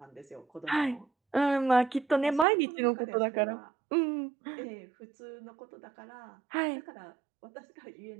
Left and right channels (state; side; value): drops out; left; at 2.5 s